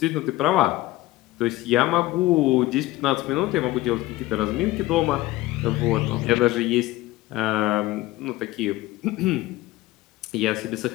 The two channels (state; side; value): quieter; right; 17.4 dB